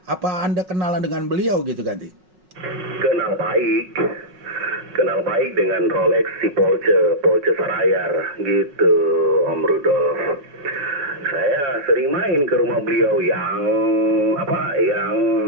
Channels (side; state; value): left; late; 5.4 ms